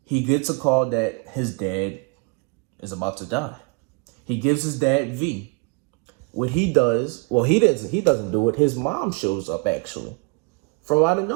He gets a call that his dad is about to die. He gives his dad V. What he does, well, he doesn't do it. His mom shows up, actually, from out of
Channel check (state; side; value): quieter; left; 31.0 dB